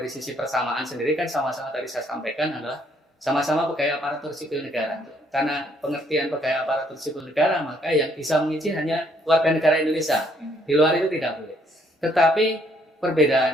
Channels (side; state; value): both; normal; correlation 0.68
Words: sisi persamaan sendiri kan sama-sama tadi saya sampaikan adalah sama-sama pegawai aparatur sipil negara. Karena pengertian pegawai aparatur sipil negara, maka yang bisa mengisi hanya warga negara Indonesia. Di luar itu tidak boleh. Tetapi